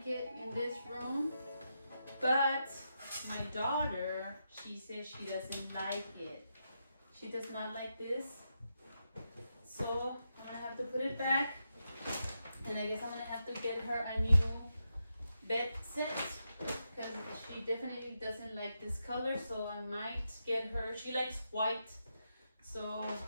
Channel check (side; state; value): both; inverted; correlation -0.85